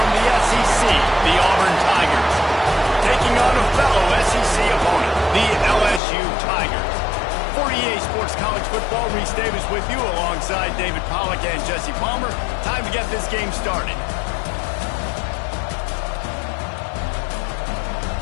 the SEC, the Auburn Tigers, taking on a fellow SEC opponent, the LSU Tigers. 48 Sports College Football, Reese Davis with you alongside David Pollack and Jesse Palmer. Time to get this game started.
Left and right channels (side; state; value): right; drops out; at 6.0 s